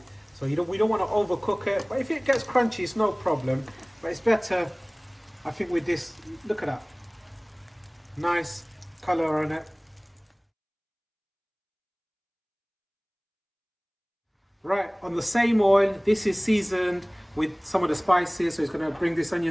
So we don't want to overcook it, but if it gets crunchy, it's no problem. But it's better, I think, with this. Look at that, nice color on it. Right, on the same oil, this is seasoned with some of the spices, so it's going to bring this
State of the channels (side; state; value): both; identical; correlation 1.00